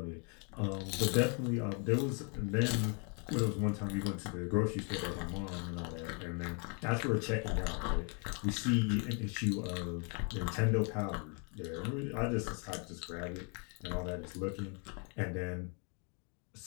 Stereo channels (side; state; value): right; quieter; 37.6 dB